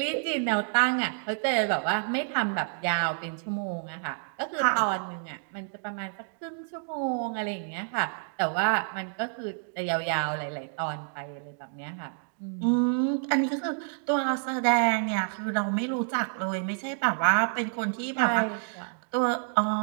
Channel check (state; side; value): silent; left; digital silence